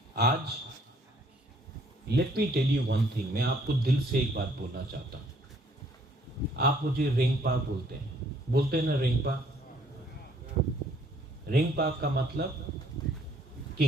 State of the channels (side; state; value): both; normal; correlation 0.63